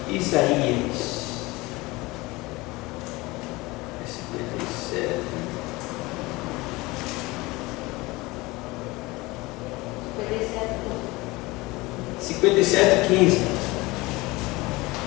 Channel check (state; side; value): quieter; right; 21.9 dB